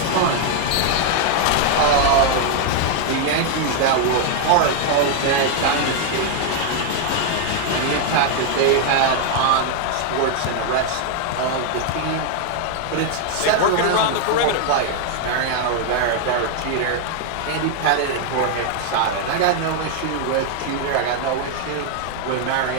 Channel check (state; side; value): different; both; correlation 0.00